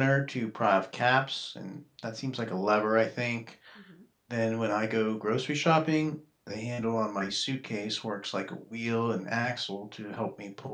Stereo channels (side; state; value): both; identical; correlation 1.00